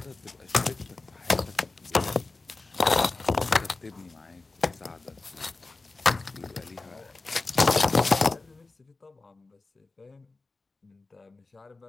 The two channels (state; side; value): quieter; right; 3.5 dB